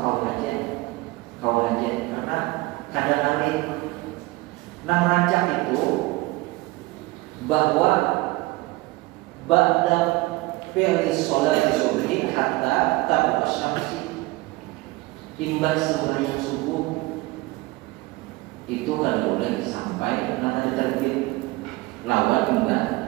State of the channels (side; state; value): left; quieter; 21.1 dB